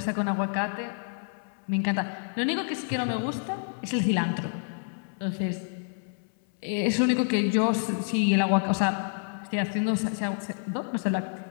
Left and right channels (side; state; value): right; silent; 59 dB below the other